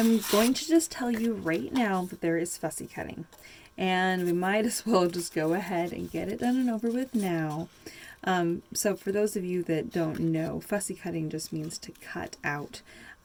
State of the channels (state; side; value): identical; both; correlation 1.00